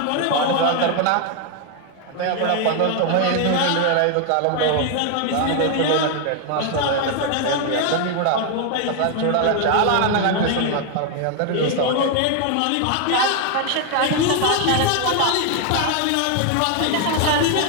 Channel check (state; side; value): different; both; correlation 0.01